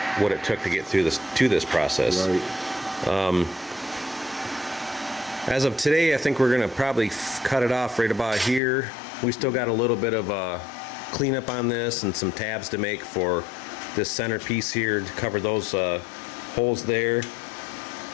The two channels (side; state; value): right; drops out; at 8.6 s